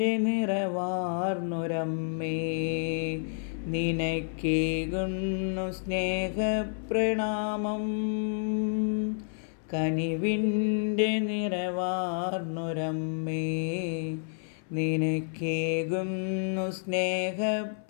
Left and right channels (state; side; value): silent; right; 58 dB below the other